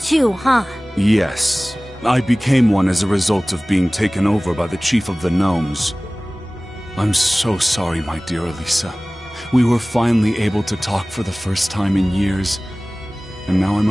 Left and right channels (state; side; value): normal; both; correlation 0.98